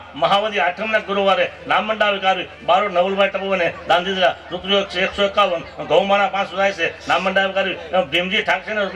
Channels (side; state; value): both; identical; correlation 1.00